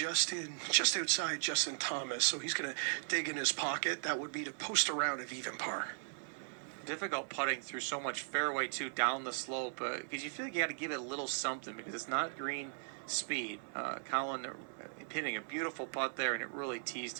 outside Justin Thomas, so he's going to dig in his pocket. That would be to post a round of even par. Difficult putting through so much fairway too down the slope because you feel like you got to give it a little something because it's not green speed. Colin hitting a beautiful putt there, and it really teased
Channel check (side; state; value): left; silent; digital silence